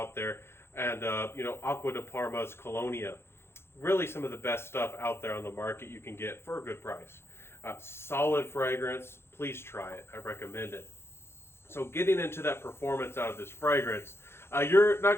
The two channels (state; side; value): late; right; 0.12 ms